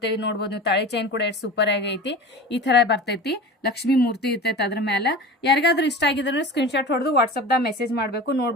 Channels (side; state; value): both; normal; correlation 0.34